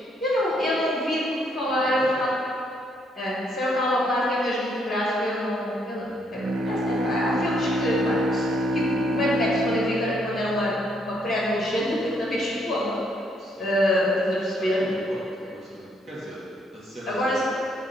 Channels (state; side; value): normal; both; correlation 0.71